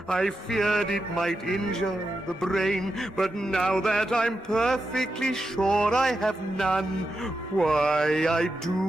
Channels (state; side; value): normal; both; correlation 0.87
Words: I feared it might injure the brain, but now that I'm perfectly sure I have none, why, I